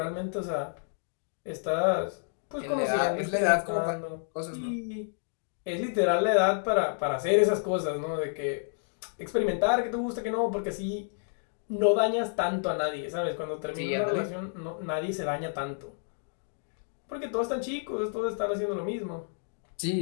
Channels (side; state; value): right; silent; digital silence